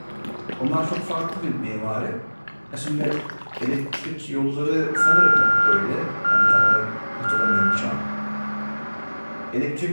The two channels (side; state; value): both; inverted; correlation -1.00